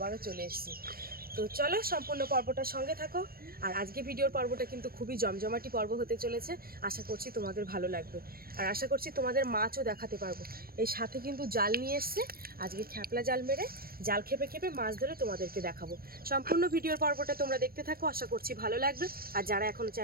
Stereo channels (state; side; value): late; left; 0.44 ms